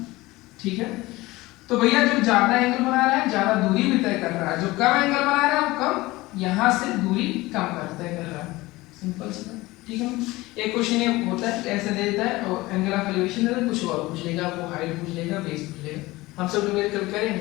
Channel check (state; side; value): quieter; right; 20.0 dB